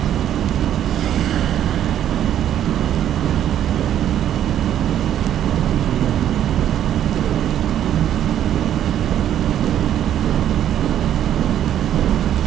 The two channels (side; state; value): left; quieter; 10.7 dB